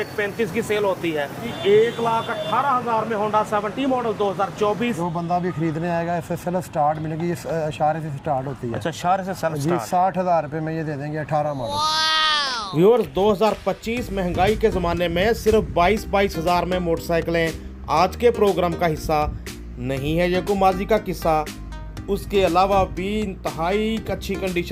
की सेल होती है। 1,18,000 में होंडा 70 मॉडल 2024। जो बंदा भी खरीदने आएगा इससे सेल्फ स्टार्ट मिलेगी, ये इशारे से स्टार्ट होती है। अच्छा, इशारे से सेल्फ जी, स्टार्ट। 60,000 रुपये में ये दे देंगे 18 मॉडल। व्यूअर्स, 2025 महंगाई के ज़माने में सिर्फ 22,000 में मोटरसाइकिलें आज के प्रोग्राम का हिस्सा नहीं है। ये को माजी का किस्सा। उसके अलावा भी इंतहाई अच्छी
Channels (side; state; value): both; identical; correlation 1.00